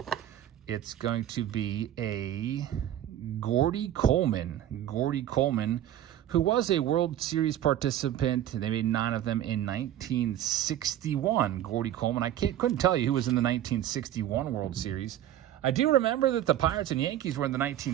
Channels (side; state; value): left; quieter; 12.0 dB